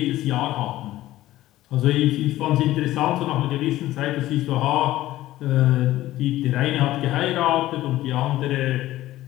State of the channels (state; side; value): quieter; right; 15.3 dB